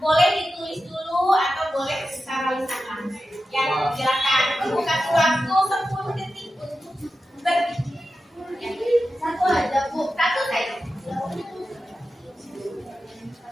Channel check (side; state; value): both; normal; correlation 0.92